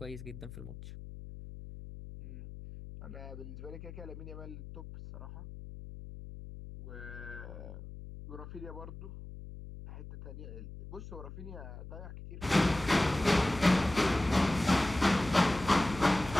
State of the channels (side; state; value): left; noise; hum, 12 dB below the sound